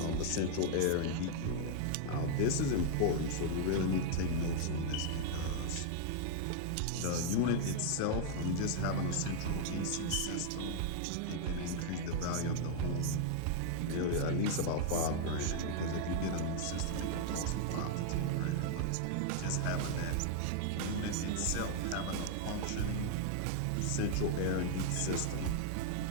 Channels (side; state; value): both; different; correlation 0.00